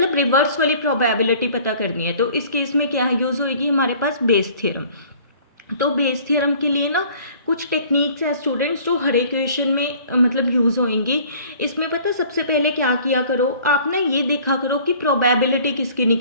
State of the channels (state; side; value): inverted; both; correlation -0.51